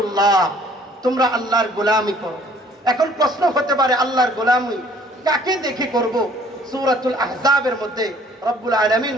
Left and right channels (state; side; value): normal; both; correlation 0.57